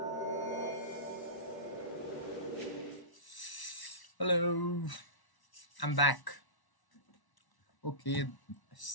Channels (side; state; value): right; late; 1.1 ms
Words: Hello. I'm back. Okay.